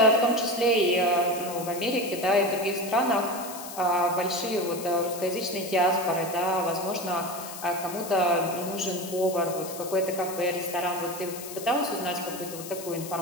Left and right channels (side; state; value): left; noise; hiss, 12 dB below the sound